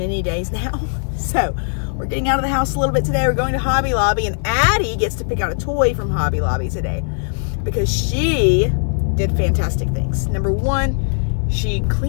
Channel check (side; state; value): right; silent; digital silence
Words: days now. So we're getting out of the house a little bit today. We're going to Hobby Lobby, and Addie gets to pick out a toy from Hobby Lobby today because she did fantastic things. Number one, she